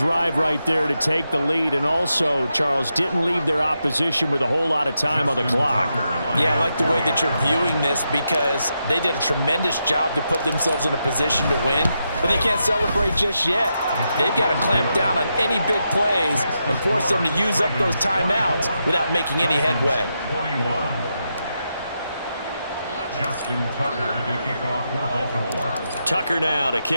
right there to take the lead. And also, Charles, didn't leave their opposition with a whole lot of time on the clock. Yeah, I like the way that you're viewing this because they did a tremendous job to put themselves in a position to win, but they can't celebrate just yet. They've got to clamp down on any big plays and force them to use up those timeouts without making any headway. Justin Tucker to kick off for Baltimore. Tucker now to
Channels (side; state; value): both; inverted; correlation -0.85